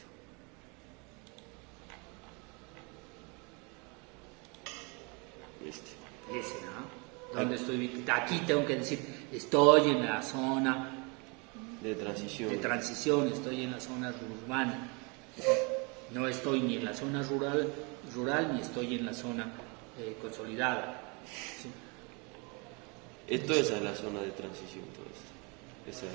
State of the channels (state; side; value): quieter; left; 31.2 dB